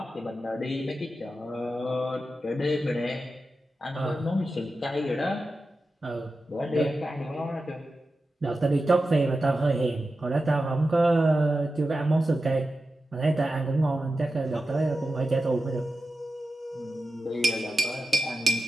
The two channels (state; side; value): normal; both; correlation 0.92